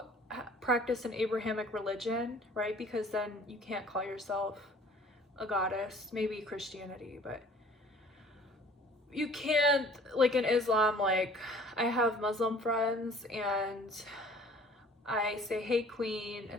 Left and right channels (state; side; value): normal; both; correlation 0.51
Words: practice an Abrahamic religion, right? Because then you can't call yourself a goddess. Maybe Christianity, but you can't, like in Islam, like I have Muslim friends and I say hey queen